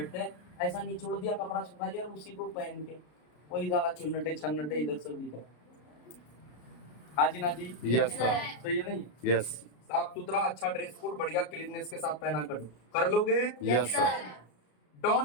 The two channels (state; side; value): late; right; 33 ms